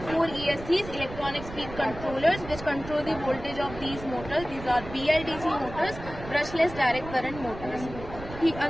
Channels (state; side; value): noise; right; rumble, 12 dB below the sound